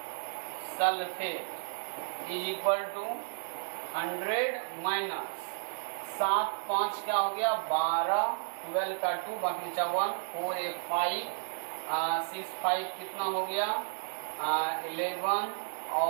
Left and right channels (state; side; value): silent; left; digital silence